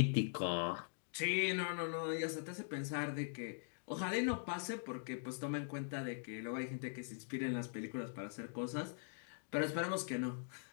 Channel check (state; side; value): silent; right; digital silence